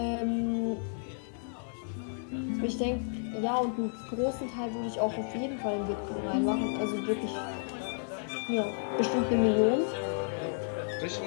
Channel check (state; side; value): silent; right; digital silence